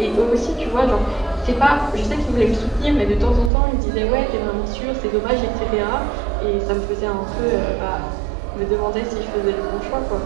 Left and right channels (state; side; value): drops out; left; at 3.5 s